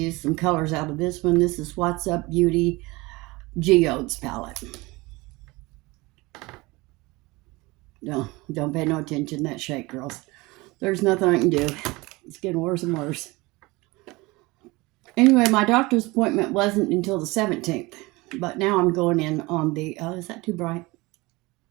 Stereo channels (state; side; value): quieter; left; 22.9 dB